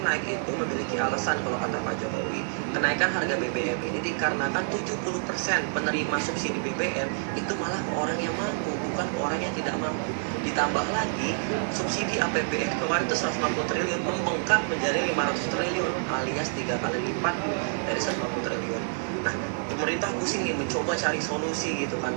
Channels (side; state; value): left; silent; digital silence